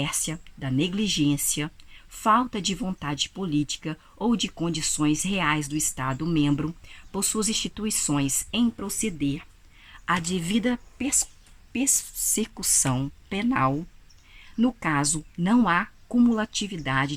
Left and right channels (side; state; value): both; identical; correlation 1.00